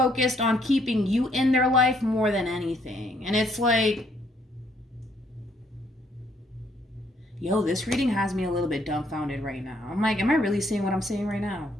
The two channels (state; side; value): normal; both; correlation 0.68